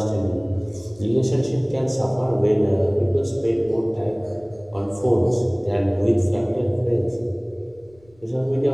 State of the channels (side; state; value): left; noise; rumble, 30 dB below the sound